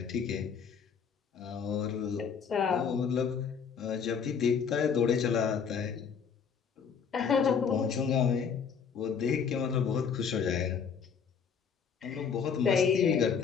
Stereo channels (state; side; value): quieter; right; 6.7 dB